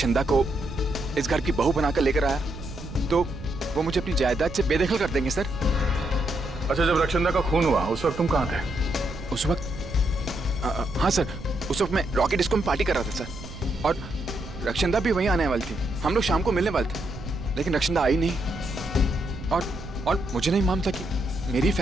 को इस घर की बहू बनाकर लेकर आया तो वो मुझे अपनी जायदाद से बेदखल कर देंगे सर। अच्छा, जब रक्षंदा का खून हुआ उस वक्त तुम कहाँ थे? उस वक्त हाँ सर, उस वक्त मैं रॉकेट डिस्को में पार्टी कर रहा था सर, और रक्षंदा भी वहीं आने वाली थी। हम लोग शाम को मिलने वाले थे, लेकिन रक्षंदा आई नहीं। और मुझे नहीं मालूम था कि मेरी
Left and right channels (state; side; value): noise; right; rumble, 12 dB below the sound